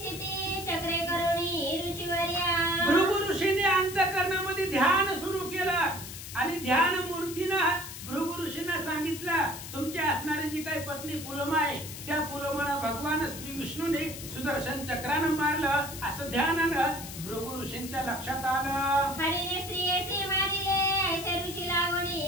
चक्रे करुणी ऋषीवर्या. भृगु ऋषीने अंतःकरणामध्ये ध्यान सुरू केलं आणि ध्यान मूर्तीनं भृगु ऋषींना सांगितलं, तुमची असणारी जी काही पत्नी पुलोमा आहे त्या पुलोमाला भगवान श्री विष्णूने सुदर्शन चक्रानं मारलं असं ध्यानानं भृगु ऋषींच्या लक्षात आलं. हरीने स्त्रियेसी मारिले, ऐसे ऋषी लागोनी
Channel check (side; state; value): left; noise; hiss, 11 dB below the sound